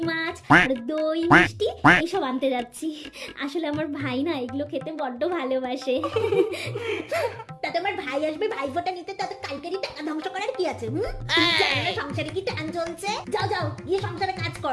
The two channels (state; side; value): identical; both; correlation 1.00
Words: মাছ আর দই মিষ্টি এইসব আনতে যাচ্ছি। আসলে আমার ভাই না এগুলো খেতে বড্ড ভালোবাসে। তাতে আমার ভাই আসবে ভাইফোঁটা নিতে, তাতে কালকেরই টাকা ধ্বংস করার কি আছে? তুমি জানো না সংসারে কি টান চলছে? যাও যাও গিয়ে সংসারে কাজ